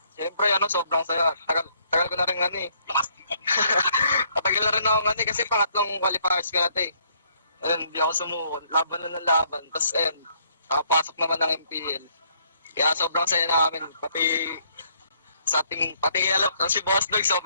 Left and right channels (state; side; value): inverted; both; correlation -0.67